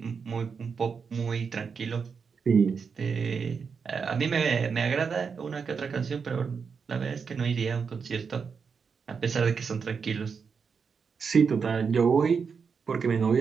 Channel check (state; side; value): quieter; left; 5.8 dB